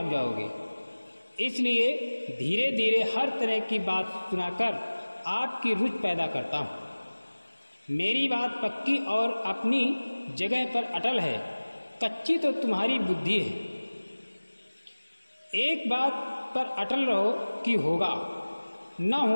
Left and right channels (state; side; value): inverted; both; correlation -1.00